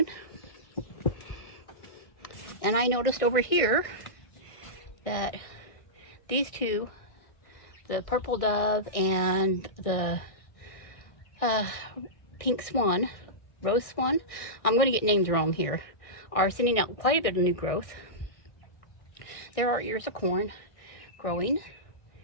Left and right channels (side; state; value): right; late; 1.6 ms